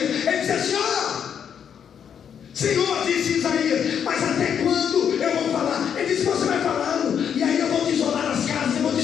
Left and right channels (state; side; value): quieter; right; 8.1 dB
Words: Ele diz assim, Senhor, disse Isaías, mas até quando eu vou falar? Ele disse, você vai falando, e aí eu vou desolar as casas, eu vou